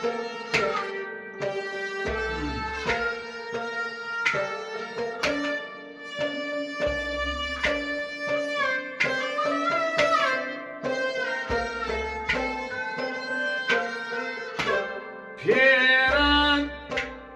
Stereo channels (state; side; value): identical; both; correlation 1.00